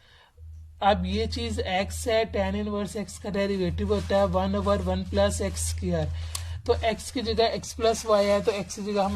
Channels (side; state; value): both; identical; correlation 1.00